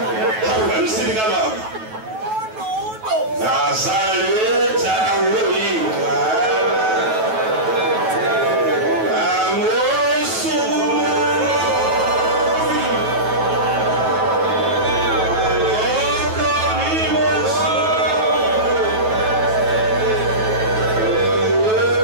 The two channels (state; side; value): late; left; 9.2 ms